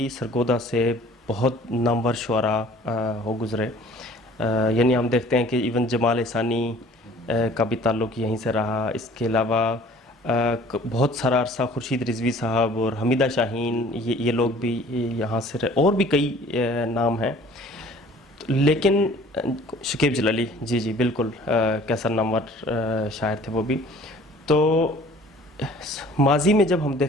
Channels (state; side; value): normal; both; correlation 0.51